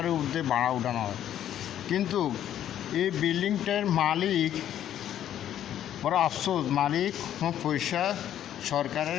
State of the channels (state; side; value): quieter; right; 10.9 dB